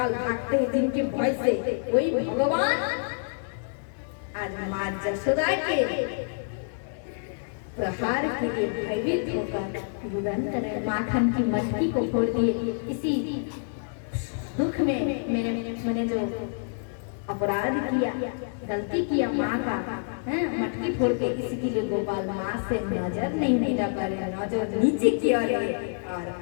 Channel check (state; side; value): silent; right; 60 dB below the other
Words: भागते हैं जिनके भय से, वही भगवान आज माँ जशोदा के प्रहार के लिए भयभीत होकर युगंधर माखन की मटकी को फोड़ दिए। इसी दुख में मैंने जो अपराध किया, गलती किया माँ का, मटकी फोड़ के, इसके लिए गोपाल माँ से नजर नहीं मिला पर नजर नीचे की ओर और